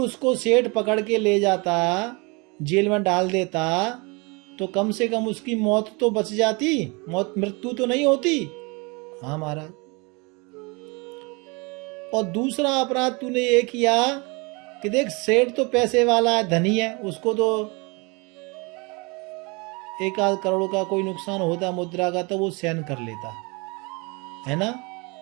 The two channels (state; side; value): quieter; left; 28.6 dB